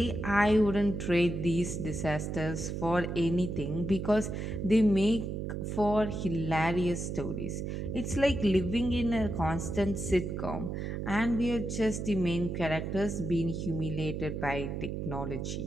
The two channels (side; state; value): right; noise; hum, 4 dB below the sound